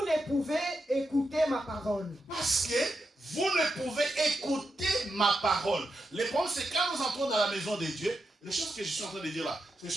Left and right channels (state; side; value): normal; both; correlation 0.86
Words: ne pouvez écouter ma parole. Parce que vous ne pouvez écouter ma parole. Le problème, c'est quand nous entrons dans la maison de Dieu, les choses que je suis en train de dire là, c'est les